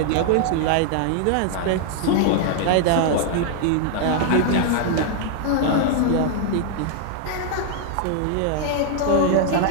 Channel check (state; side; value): different; both; correlation 0.00